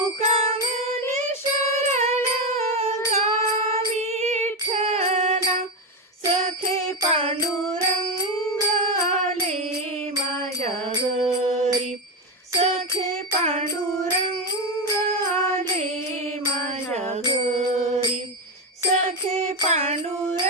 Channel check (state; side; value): normal; both; correlation 0.13